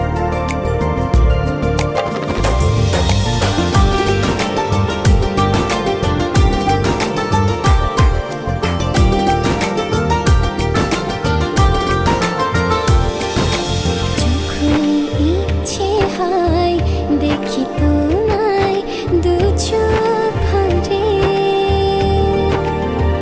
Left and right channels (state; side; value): identical; both; correlation 1.00